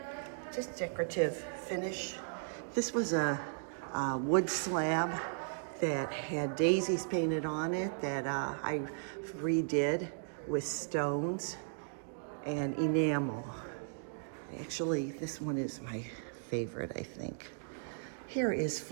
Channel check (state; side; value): silent; left; digital silence